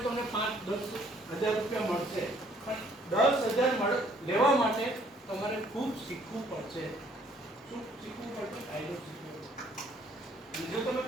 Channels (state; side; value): normal; both; correlation 0.62